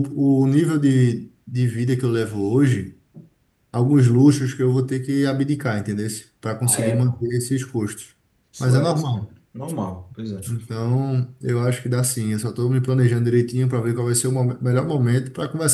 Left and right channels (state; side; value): identical; both; correlation 1.00